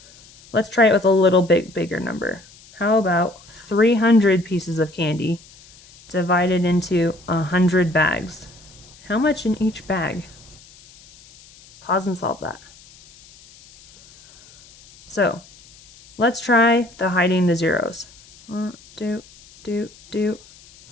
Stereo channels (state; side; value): noise; left; hiss, 24 dB below the sound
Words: Let's try it with a little bit bigger number. How about 300 pieces of candy divided into 100 bags? How much in each bag? Pause and solve that. So let's try the hiding the zeros. 3